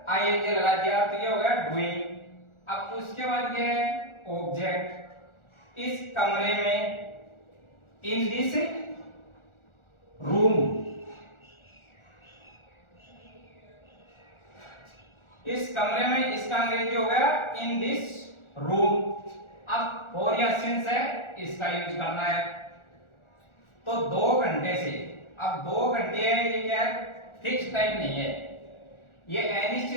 आईएनजी लगा दिया तो ये हो गया डूइंग। अब उसके बाद क्या है, ऑब्जेक्ट, इस कमरे में, इन दिस रूम, इस कमरे में, इसका अंग्रेजी हो गया इन दिस रूम। अब फॉर या सिंस है, इसका यूज करना है। तो 2 घंटे से, अब 2 घंटे है, ये क्या है, फिक्स टाइम नहीं है, ये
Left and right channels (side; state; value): right; late; 1.4 ms